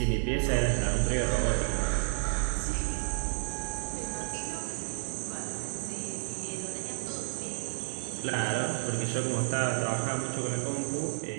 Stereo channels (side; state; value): left; silent; 57 dB below the other